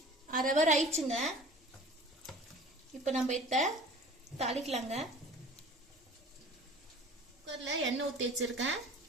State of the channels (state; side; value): normal; both; correlation 0.43